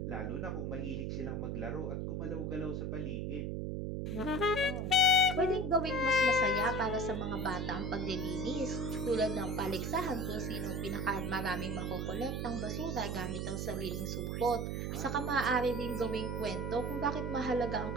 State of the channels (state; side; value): noise; right; hum, 2 dB below the sound